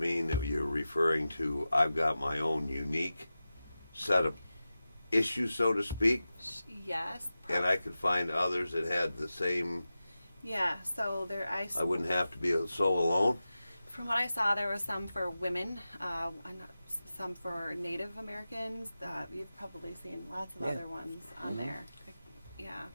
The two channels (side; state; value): both; inverted; correlation -0.93